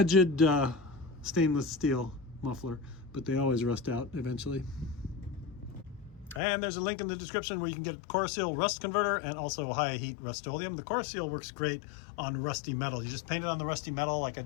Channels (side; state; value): right; drops out; at 6.4 s